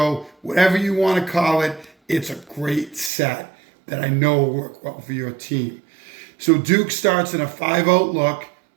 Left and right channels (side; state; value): left; drops out; at 3.1 s